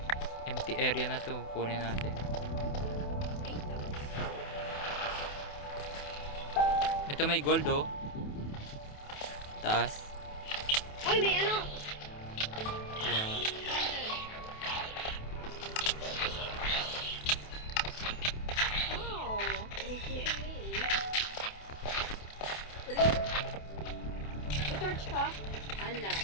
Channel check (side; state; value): right; late; 28 ms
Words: Empty area na to. Kunin natin. Ito may gold oh. Taas. Uy, may ano? Wow. Oh, may torch ka? Ala.